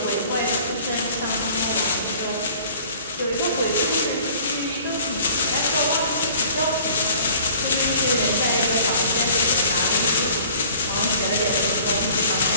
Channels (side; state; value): both; inverted; correlation -0.51